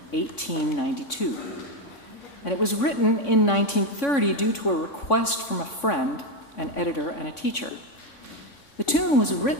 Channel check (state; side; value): late; right; 3.5 ms